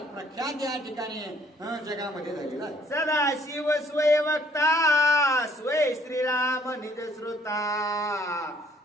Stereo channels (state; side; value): normal; both; correlation 0.62